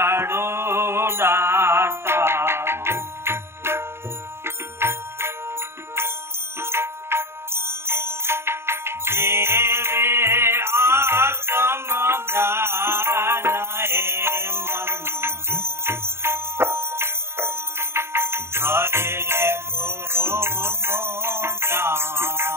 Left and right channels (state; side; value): late; left; 0.12 ms